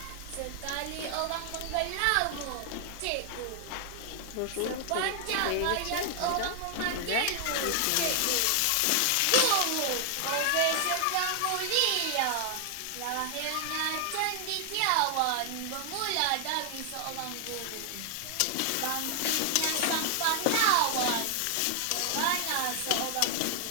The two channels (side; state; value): both; different; correlation 0.00